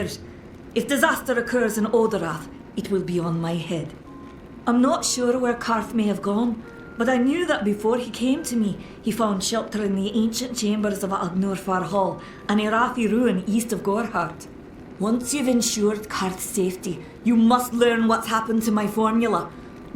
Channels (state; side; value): identical; both; correlation 1.00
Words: If disaster occurs in Odorath, it will be on my head. I'm not sure where Karth may have gone, but I knew that before he came to me, he found shelter in the ancient chambers of Agnor Far Hall, an Irathi ruin east of Gorhart. Once you've ensured Karth's safety, you must learn what's happened to my formula.